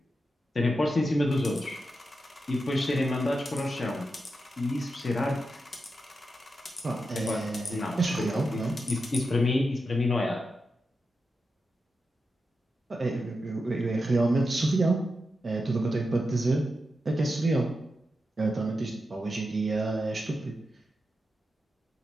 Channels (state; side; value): normal; both; correlation 0.88